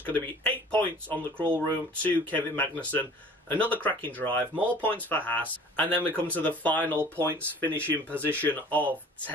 going to be 8 points on the crawl room to Kevin Magnussen. Another cracking drive, more points for Haas. And then we come to the final points finishing position of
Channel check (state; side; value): normal; both; correlation 0.48